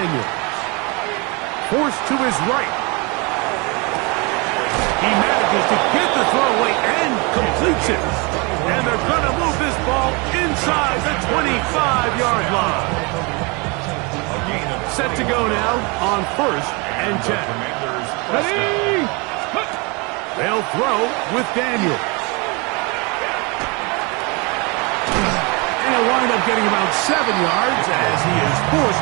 Forced to his right. He manages to get the throw away and completes it. And they're going to move this ball inside the 25-yard line. Set to go now on 1st and 10. Ready. They'll throw with Daniels. And he'll wind up getting about 7 yards as he is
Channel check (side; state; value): left; quieter; 29.2 dB